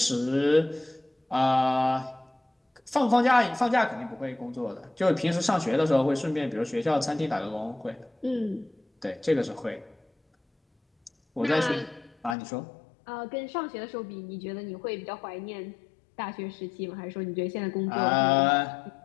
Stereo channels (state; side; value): drops out; right; at 12.4 s